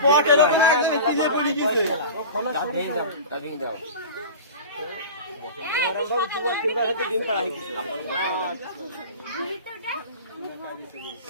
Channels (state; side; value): inverted; both; correlation -0.33